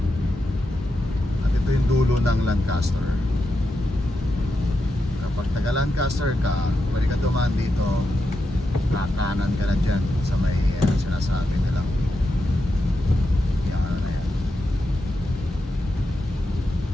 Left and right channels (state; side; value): normal; both; correlation 0.87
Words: Lancaster. Kapag taga Lancaster ka, pwede ka dumaan dito, kakanan ka na dyan sa may sinasabi nilang yung ano na yan.